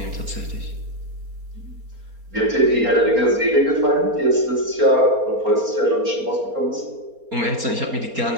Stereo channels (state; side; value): late; left; 4.3 ms